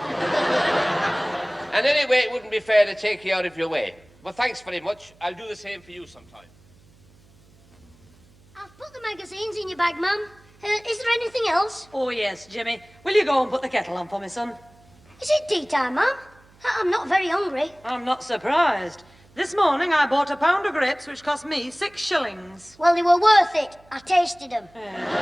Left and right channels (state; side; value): noise; right; hum, 28 dB below the sound